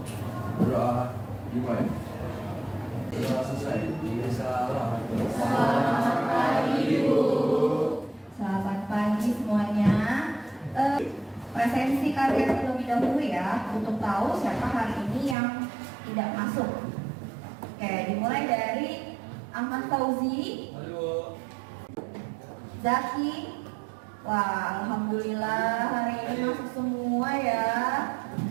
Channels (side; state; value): left; drops out; at 15.4 s